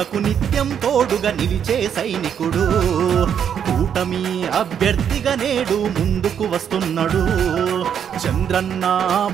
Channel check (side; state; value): left; quieter; 8.4 dB